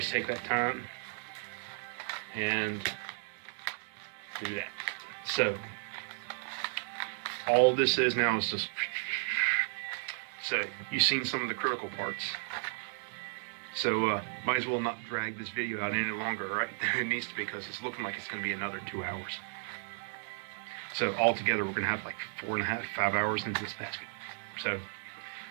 take that time and do that. So all this is now is just. So you've seen some of the critical parts. So might as well not drag this video out any longer, right? It needs to, because it's looking like it's going to be another 2 hours. So altogether, we're going to have like 4.5, 5 hours into this basket. So,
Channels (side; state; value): left; silent; digital silence